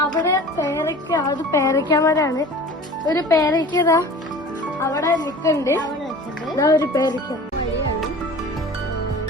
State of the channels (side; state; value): both; normal; correlation 0.41